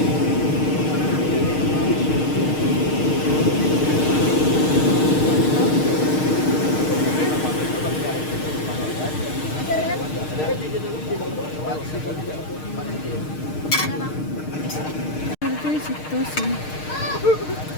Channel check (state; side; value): late; right; 6.5 ms